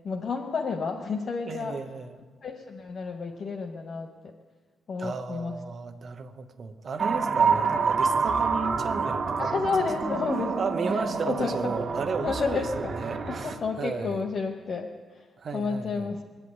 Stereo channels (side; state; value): both; normal; correlation 0.79